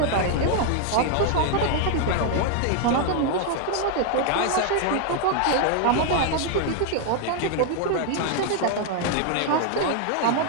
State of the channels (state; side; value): different; both; correlation 0.00